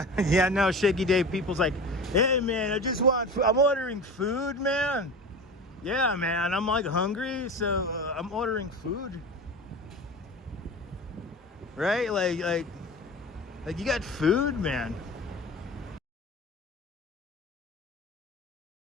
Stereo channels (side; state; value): both; normal; correlation 0.32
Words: Yeah, no, Shaky Dave, people's like, hey man, I'm ordering food, man. Yeah, man, I'm like hungry, so I'm ordering food. Right? Like you got food, man.